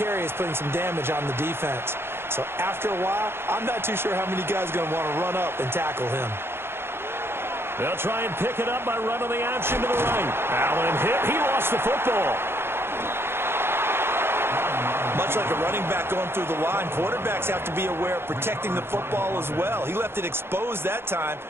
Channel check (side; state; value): left; late; 0.11 ms